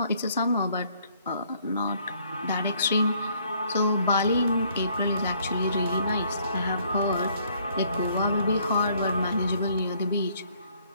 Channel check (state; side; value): inverted; both; correlation -0.65